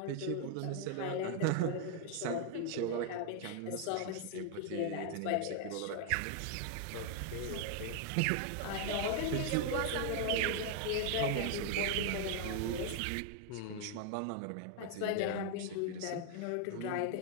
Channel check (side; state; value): both; different; correlation 0.00